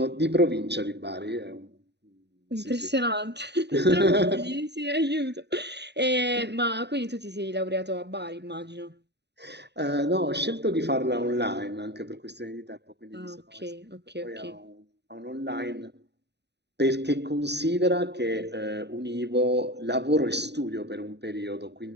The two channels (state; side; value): late; left; 0.50 ms